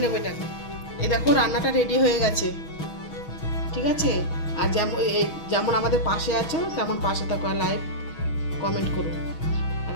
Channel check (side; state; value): right; late; 6.2 ms